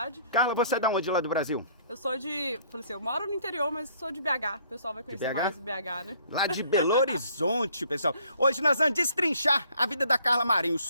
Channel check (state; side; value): inverted; both; correlation -0.61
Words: Carla, você é de onde lá do Brasil? Eu sou de, falei assim, eu moro no interior, mas sou de BH. O pessoal vai conhecer mais BH, né? Lá de Belo Horizonte, pessoal. Hoje nós vamos destrinchar a vida da Carla Marinho.